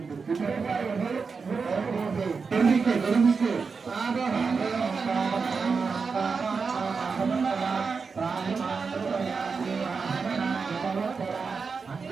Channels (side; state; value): left; quieter; 5.1 dB